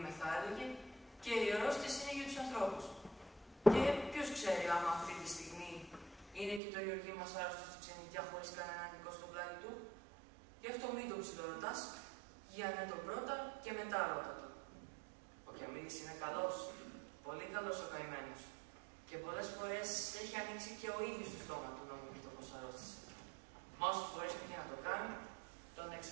θα έλεγε, και η αρρώστιες είναι για τους ανθρώπους. Και ποιος ξέρει άμα αυτή τη στιγμή είναι και το Γεωργί μας άρρωστο στη ξενιτιά χωρίς κανέναν νικό στο πλάι του. Γι' αυτό μην το ψιλορωτάς, για ναι τον πρώτα και μετά ρώτα το. Ο Κιαμίλης είναι καλός, πολύ καλός ο καημένος. Και πολλές φορές έχει ανοίξει και ο ίδιος το στόμα του να μου πει το πως αρρώστησε. Μα όσες φορές πήγε να το κάνει, τον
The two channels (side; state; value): left; drops out; at 6.6 s